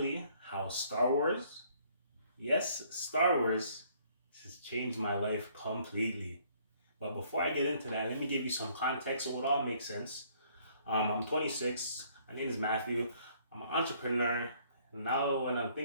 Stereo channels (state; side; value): inverted; both; correlation -0.63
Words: how Star Wars, yes, Star Wars, has changed my life completely. But before I get into that, let me give you some context so it all makes sense. I'm 26. My name is Matthew. I'm an entrepreneur. Now, when I'm